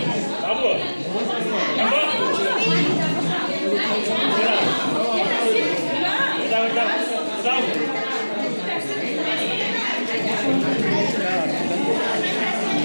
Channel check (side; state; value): both; inverted; correlation -1.00